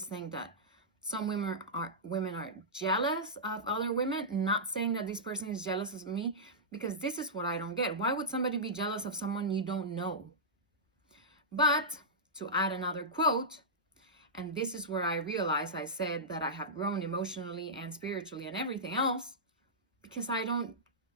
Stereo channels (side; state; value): both; normal; correlation -0.14